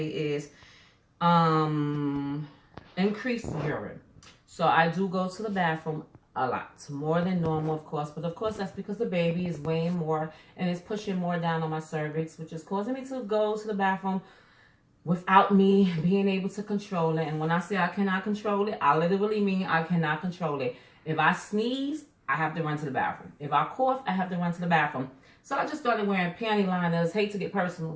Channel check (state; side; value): identical; both; correlation 1.00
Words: is increased urine. So I do go to the bathroom a lot, more than normal, of course, but of course that's because the baby is weighing more and it's pushing more down on my cervix, which is causing me to go to the bathroom without me being able to control it. And when I say I cannot control it, I literally mean I cannot control it. If I sneeze, I have to run to the bathroom. If I cough, I have to run to the bathroom. So I just started wearing panty liners. Hate to get personal,